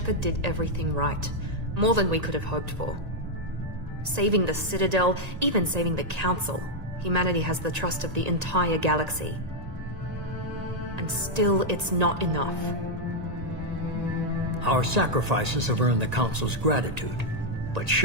did everything right. More than we could have hoped for. Saving the Citadel, even saving the Council. Humanity has the trust of the entire galaxy. And still, it's not enough. Our sacrifices have earned the Council's gratitude, but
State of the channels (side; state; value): left; late; 1.8 ms